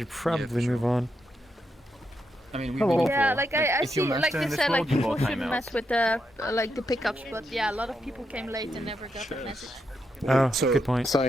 probably move on. I mean, yeah, like I see, like you said, like people shouldn't mess with the like the pickups, but yeah, a lot of people came late and never got the message. Oh, so, good point.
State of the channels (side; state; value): both; normal; correlation 0.83